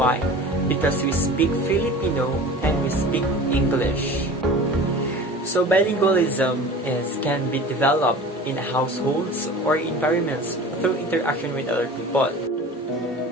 Because we speak Filipino and we speak English. So bilingualism can be developed in households or environments through interaction with other people.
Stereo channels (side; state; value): both; normal; correlation 0.38